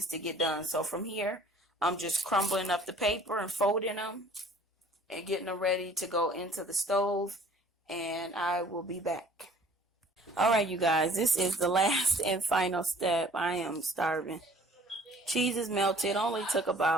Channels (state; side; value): normal; both; correlation 0.53